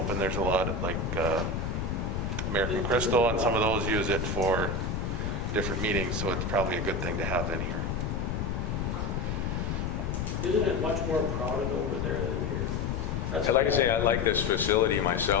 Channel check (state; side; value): noise; left; rumble, 2 dB below the sound